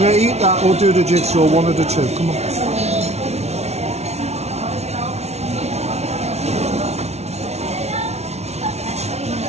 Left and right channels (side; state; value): left; late; 0.31 ms